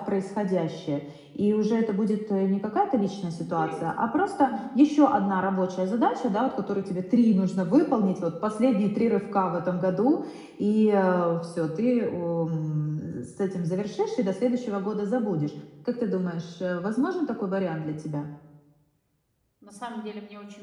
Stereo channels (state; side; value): identical; both; correlation 1.00